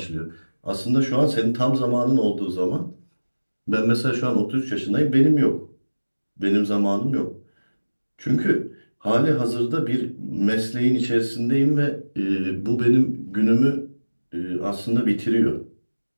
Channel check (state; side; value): inverted; both; correlation -1.00